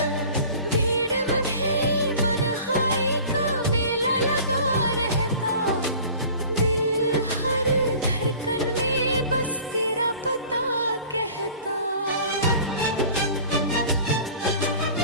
भीड़ में भी मनहाई का मेला लगा रहता, दिल हर धड़कन में बस तेरा पता कहता।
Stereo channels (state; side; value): inverted; both; correlation -0.44